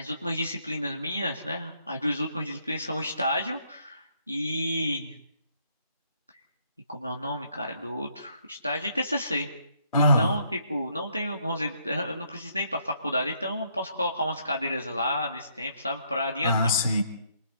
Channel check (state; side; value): inverted; both; correlation -0.71